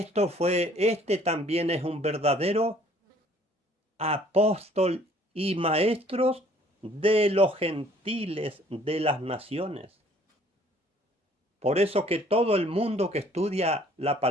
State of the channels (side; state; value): both; normal; correlation 0.58